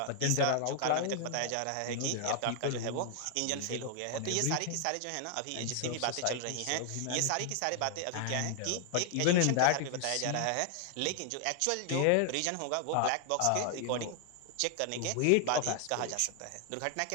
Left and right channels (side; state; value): both; different; correlation 0.00